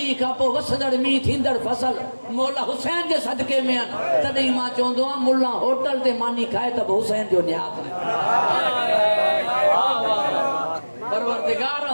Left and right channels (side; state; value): both; inverted; correlation -1.00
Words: खां पोइ वसंदड़ मींहुं थींदड़ फसल मौला हुसैन जे सदके में आहिनि। तॾहिं मां चवंदो आहियां, मुल्ला होटल ते मानी खाए त हुसैन जो न्यात आहे। परवरदिगार